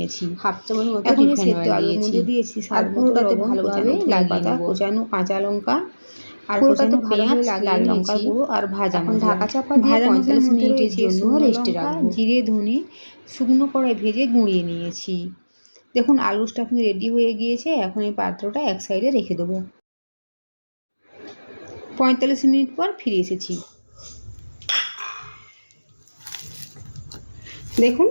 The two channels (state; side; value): inverted; both; correlation -1.00